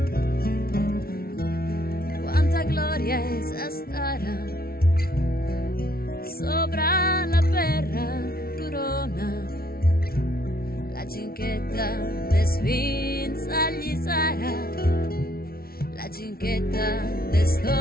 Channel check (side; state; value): right; late; 0.44 ms